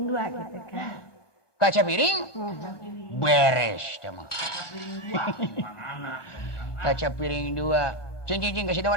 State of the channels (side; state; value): right; late; 1.2 ms